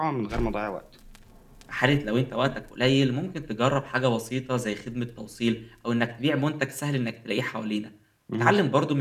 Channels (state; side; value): identical; both; correlation 1.00